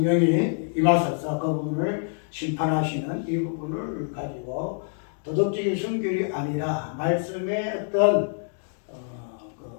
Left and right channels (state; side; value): silent; right; digital silence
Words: 임하셔서 그 부분을 심판하시는 이 부분을 가지고 도덕적인 순결이 아니라 말씀의 어떤